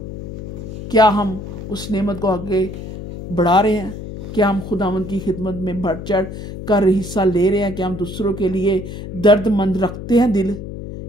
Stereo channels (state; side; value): noise; left; hum, 9 dB below the sound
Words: क्या हम उस नेमत को आगे बढ़ा रहे हैं, क्या हम खुदावंद की खिदमत में बढ़ चढ़ कर हिस्सा ले रहे हैं, क्या हम दूसरों के लिए दर्दमंद रखते हैं दिल,